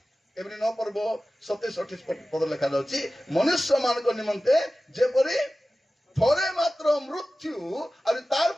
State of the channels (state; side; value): normal; both; correlation 0.95